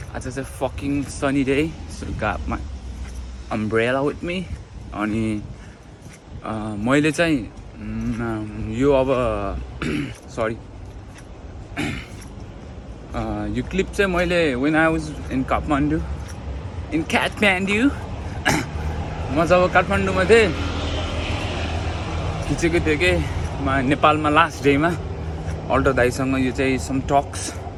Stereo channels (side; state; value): both; identical; correlation 1.00